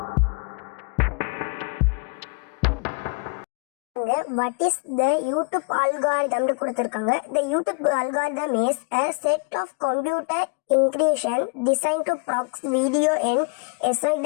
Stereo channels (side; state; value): right; quieter; 34.0 dB